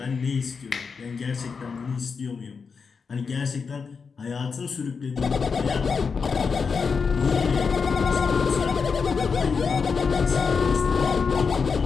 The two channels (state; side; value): quieter; right; 5.4 dB